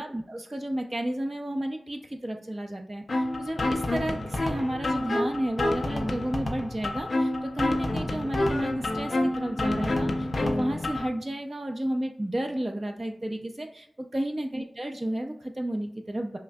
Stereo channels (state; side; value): normal; both; correlation 0.96